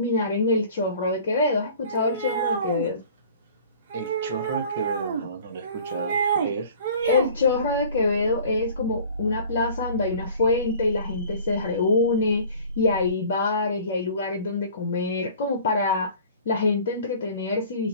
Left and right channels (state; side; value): inverted; both; correlation -0.47